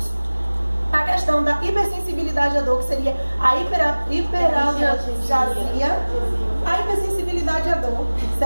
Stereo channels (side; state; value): both; inverted; correlation -1.00